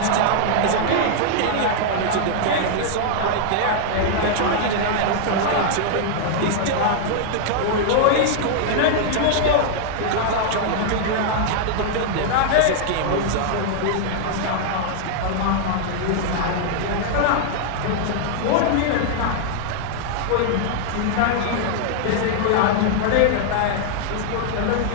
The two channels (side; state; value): both; different; correlation -0.01